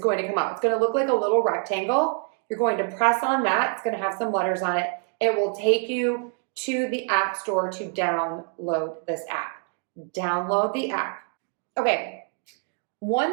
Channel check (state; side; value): quieter; left; 38.3 dB